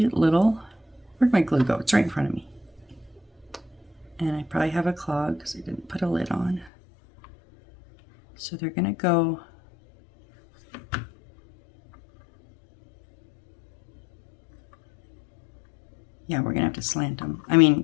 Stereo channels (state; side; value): drops out; right; at 6.7 s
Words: little, where'd my glue go? It's right in front of me. And I probably have a clog because I didn't put a lid on. So they're going to go yeah, we're going to have to slant them. I mean,